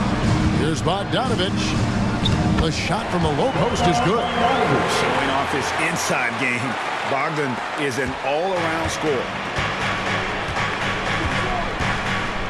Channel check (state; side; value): identical; both; correlation 1.00